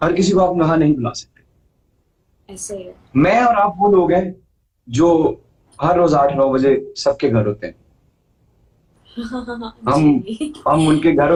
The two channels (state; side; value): identical; both; correlation 1.00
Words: हर किसी को आप वहां नहीं बुला सकते। ऐसे है। मैं और आप वो लोग हैं जो हर रोज 8-9 बजे सबके घर होते हैं। हम उनके घर